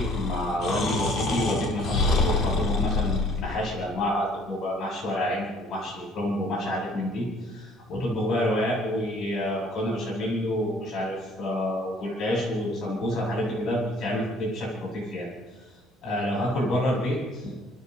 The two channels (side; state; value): both; normal; correlation 0.57